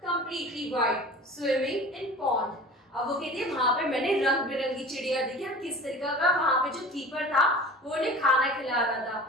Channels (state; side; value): normal; both; correlation 0.39